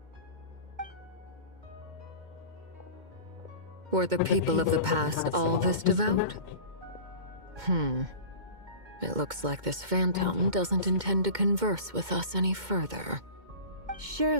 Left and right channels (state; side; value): late; left; 2.2 ms